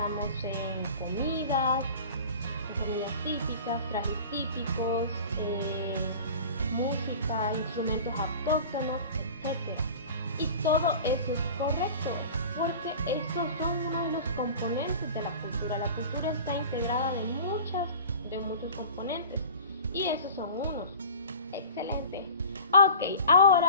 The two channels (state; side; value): inverted; both; correlation -0.39